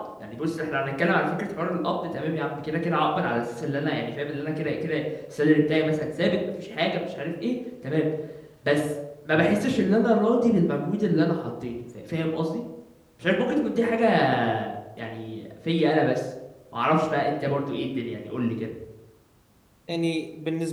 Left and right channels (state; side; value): identical; both; correlation 1.00